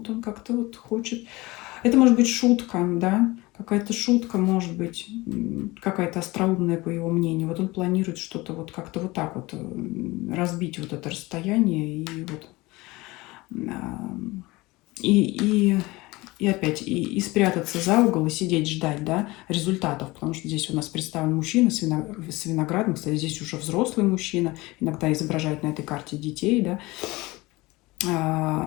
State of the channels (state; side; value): quieter; right; 21.5 dB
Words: он как-то вот хочет... Это может быть шутка, да, какая-то шутка, может быть, какая-то остроумная, по его мнению. Вот он планирует что-то вот как-то вот так вот разбить вот это расстояние и вот... И опять, и спрятаться за угол, и сидеть ждать, да, результатов. Потому что здесь у нас представлен мужчина с виноградом. Кстати, здесь уже взрослый мужчина. Иногда изображают на этой карте детей, да.